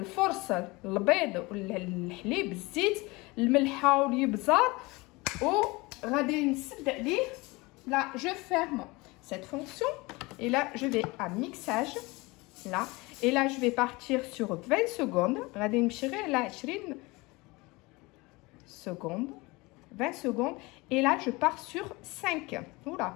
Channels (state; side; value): quieter; right; 23.7 dB